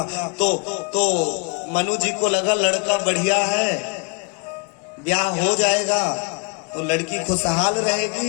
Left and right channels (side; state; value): right; quieter; 35.0 dB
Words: तो मनु जी को लगा लड़का बढ़िया है, ब्याह हो जाएगा तो लड़की खुशहाल